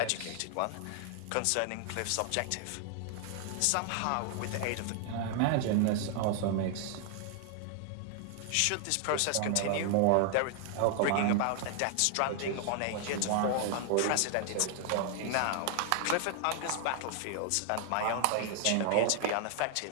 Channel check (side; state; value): both; different; correlation 0.00